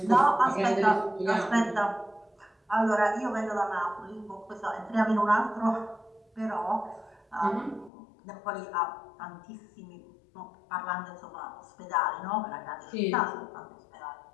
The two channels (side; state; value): right; drops out; at 7.9 s